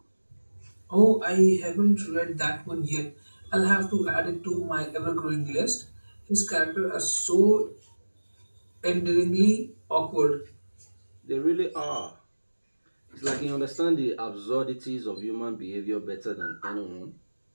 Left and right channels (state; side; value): inverted; both; correlation -1.00